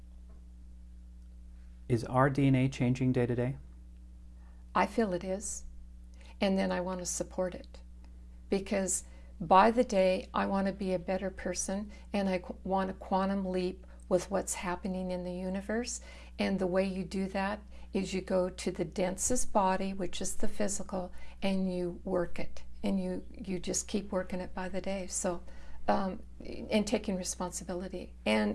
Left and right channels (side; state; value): both; identical; correlation 1.00